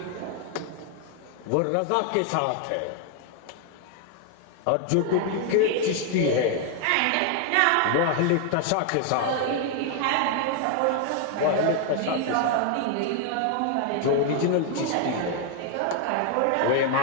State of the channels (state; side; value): different; both; correlation 0.00